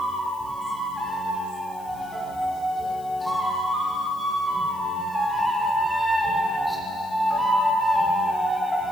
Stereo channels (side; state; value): left; noise; hiss, 23 dB below the sound